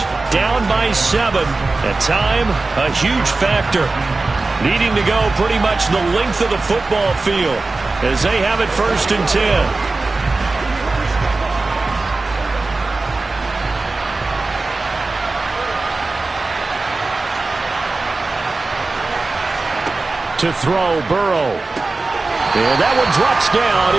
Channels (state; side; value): quieter; left; 3.5 dB